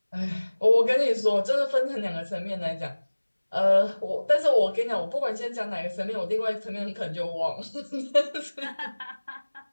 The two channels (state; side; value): inverted; both; correlation -1.00